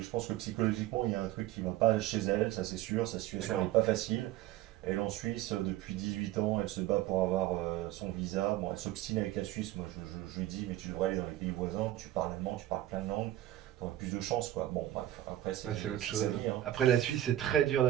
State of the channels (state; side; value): quieter; left; 13.9 dB